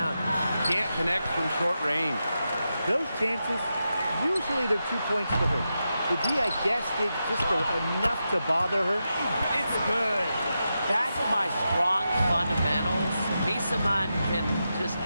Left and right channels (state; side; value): inverted; both; correlation -0.88